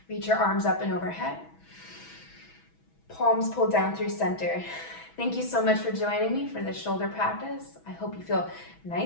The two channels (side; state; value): right; late; 6.1 ms